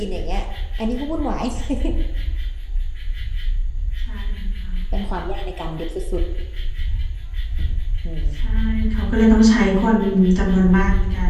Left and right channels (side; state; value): both; identical; correlation 1.00